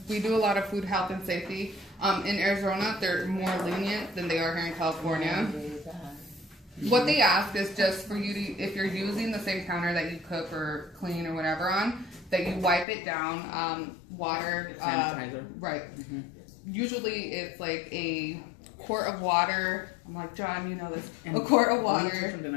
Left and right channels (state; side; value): drops out; right; at 12.9 s